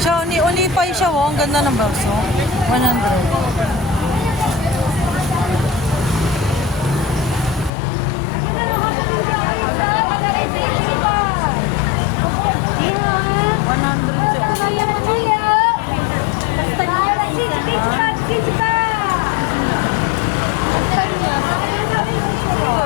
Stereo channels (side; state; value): right; drops out; at 7.7 s